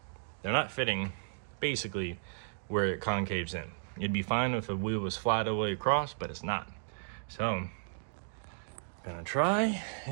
They're not fitting basically where it concaves in. It'd be fine if the wheel was flat all the way across, but it's not. So I'm gonna try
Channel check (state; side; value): silent; left; digital silence